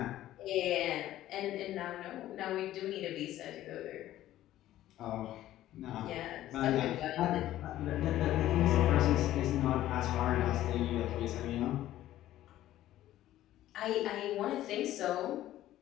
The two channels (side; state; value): right; quieter; 13.8 dB